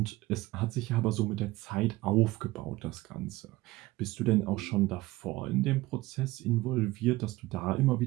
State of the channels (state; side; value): quieter; left; 19.2 dB